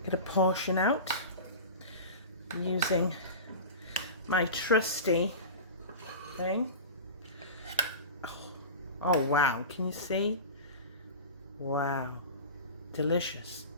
get a portion out using my trusty thing. Oh wow, can you see? Wow, delicious.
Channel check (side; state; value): both; inverted; correlation -0.30